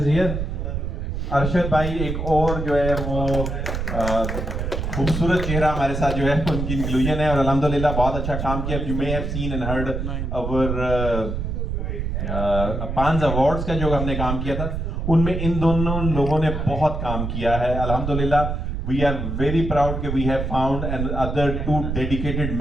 is here. Arshad भाई एक और जो है वो खूबसूरत चेहरा हमारे साथ जो है उनकी इंक्लूजन है, और अल्हम्दुलिल्लाह बहुत अच्छा काम किया। You may have seen and heard our पांच अवार्ड्स का जो हमने काम किया था, उनमें इन दोनों लोगों ने बहुत काम किया है। अल्हम्दुलिल्लाह वी आर वेरी प्राउड कि we have found and other 2 dedicated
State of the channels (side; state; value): right; noise; rumble, 3 dB below the sound